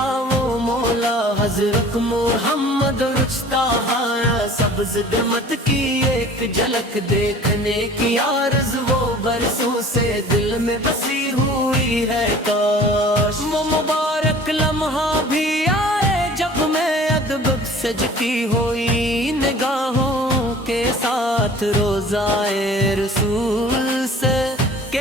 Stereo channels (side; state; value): both; normal; correlation 0.46